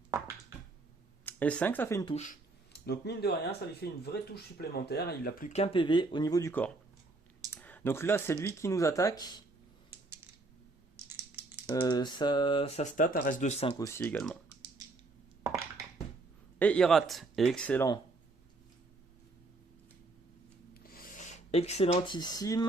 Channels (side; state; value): left; quieter; 3.2 dB